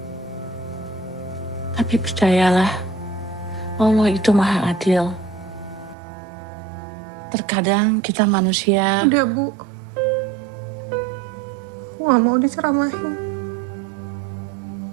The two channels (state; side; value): drops out; left; at 6.0 s